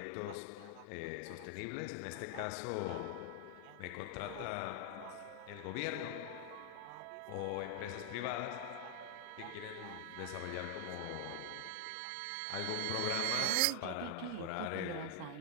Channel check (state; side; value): different; both; correlation 0.00